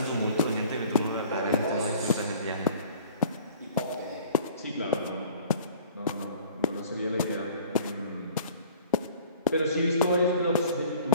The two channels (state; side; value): inverted; both; correlation -0.49